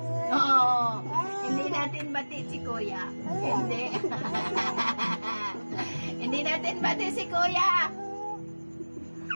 Oo, hindi natin bati si kuya. Hindi. Hindi natin bati si kuya.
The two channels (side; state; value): both; inverted; correlation -1.00